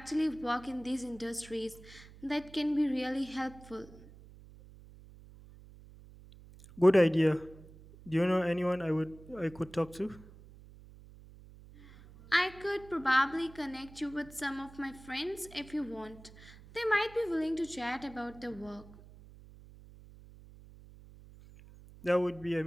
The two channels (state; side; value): noise; right; hum, 20 dB below the sound